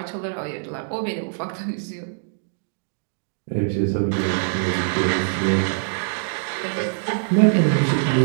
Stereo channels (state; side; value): silent; left; digital silence